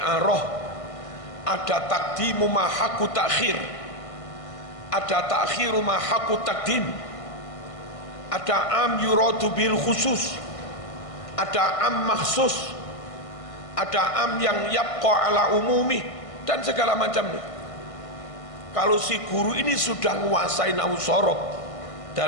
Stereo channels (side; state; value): right; late; 1.6 ms